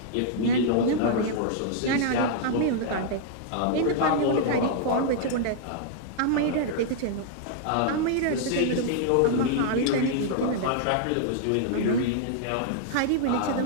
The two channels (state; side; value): different; both; correlation -0.01